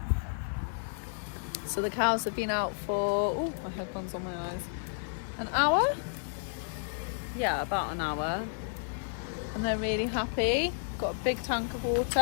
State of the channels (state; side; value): silent; right; 57 dB below the other